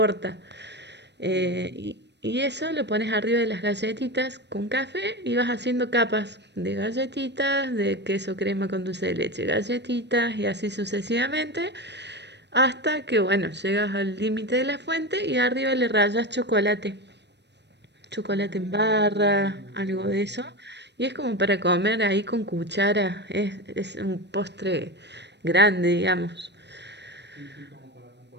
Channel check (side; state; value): left; late; 0.50 ms